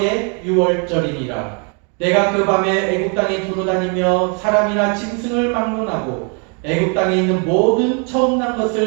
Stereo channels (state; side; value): quieter; left; 37.4 dB